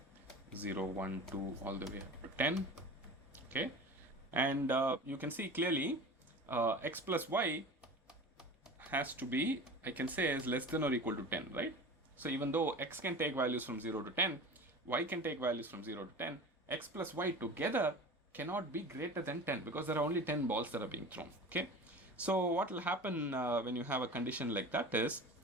0, 1, 2, all the way up to 10. Okay, and you can see clearly X plus Y has to be, I can say, is less than or equal to 10, right? So even though X can take values from 0 to 10, Y can take values from 0 to 10, X plus Y together cannot be greater than 10 because there are only 10 balls that are being thrown. Okay, so what will happen when you have a condition like that is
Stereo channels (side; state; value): both; normal; correlation 0.35